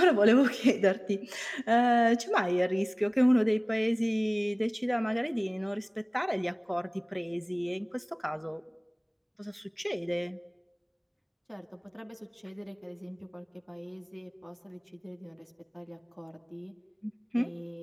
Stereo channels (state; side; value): identical; both; correlation 1.00